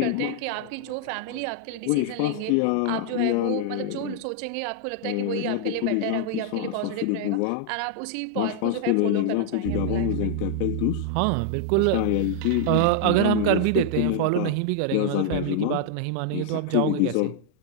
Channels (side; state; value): both; different; correlation -0.01